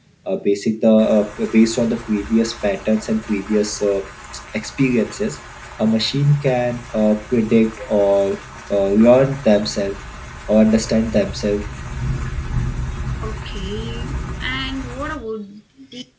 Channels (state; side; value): identical; both; correlation 1.00